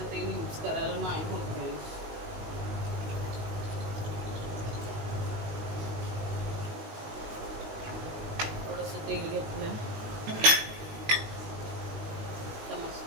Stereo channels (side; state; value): left; late; 19 ms